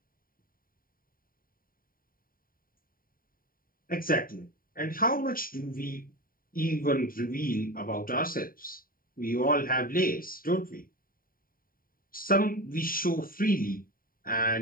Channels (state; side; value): late; right; 0.41 ms